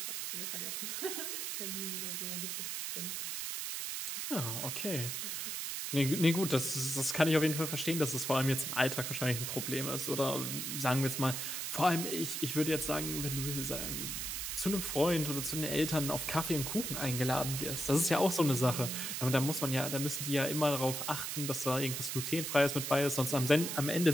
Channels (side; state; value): right; noise; hiss, 3 dB below the sound